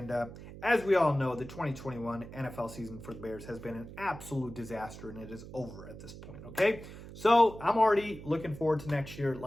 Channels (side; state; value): right; noise; hum, 14 dB below the sound